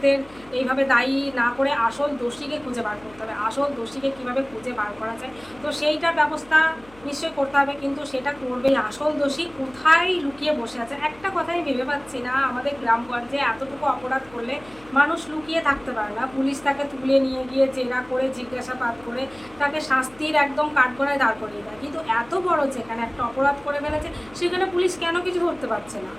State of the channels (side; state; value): left; noise; hum, 24 dB below the sound